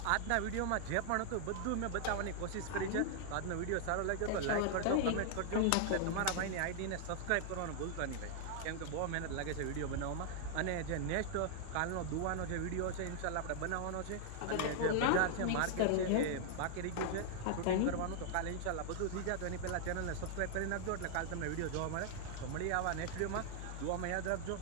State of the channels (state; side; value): different; both; correlation 0.00